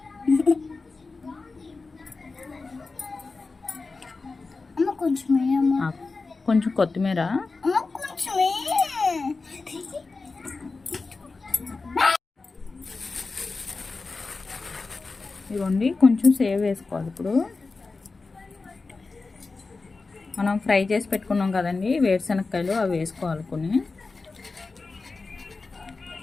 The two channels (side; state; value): right; quieter; 3.9 dB